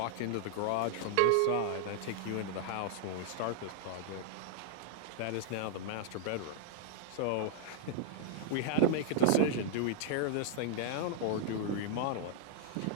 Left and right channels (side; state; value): both; different; correlation -0.01